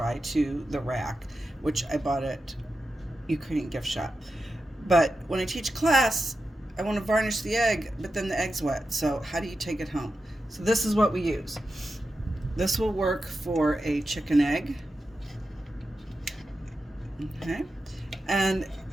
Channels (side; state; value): both; normal; correlation 0.90